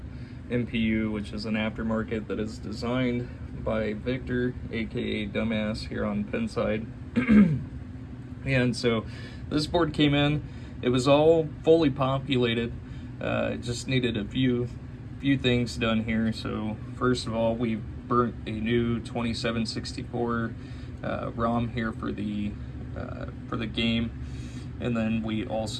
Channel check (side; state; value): both; identical; correlation 1.00